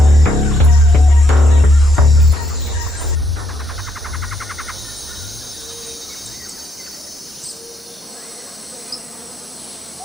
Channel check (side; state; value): both; normal; correlation 0.74